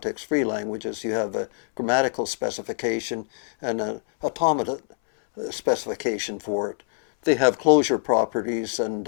languages. You have a grammatical specification and an automata specification for it. They have closure properties and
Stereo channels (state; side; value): silent; right; 62 dB below the other